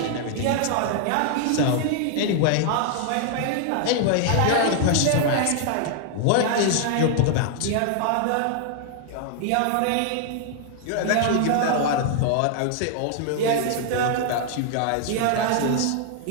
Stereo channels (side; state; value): both; different; correlation 0.00